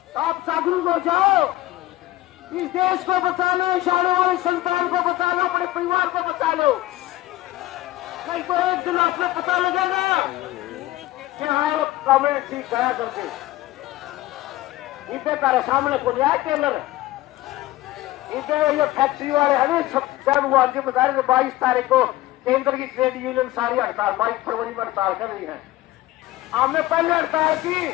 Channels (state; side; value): quieter; right; 16.9 dB